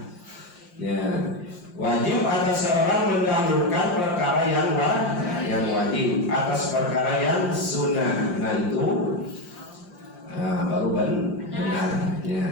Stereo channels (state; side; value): late; right; 5.7 ms